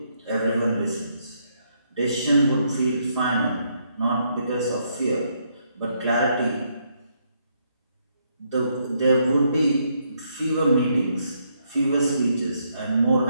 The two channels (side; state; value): both; inverted; correlation -0.75